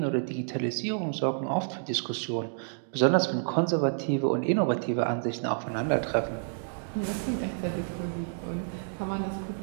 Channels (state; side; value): silent; left; digital silence